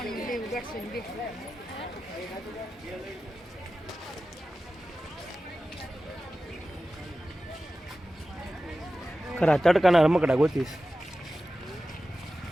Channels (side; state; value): both; normal; correlation 0.94